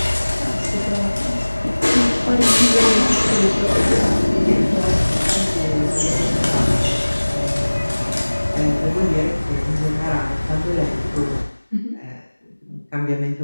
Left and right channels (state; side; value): inverted; both; correlation -1.00